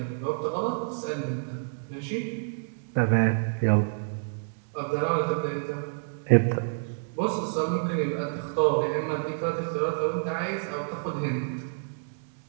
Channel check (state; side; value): silent; left; digital silence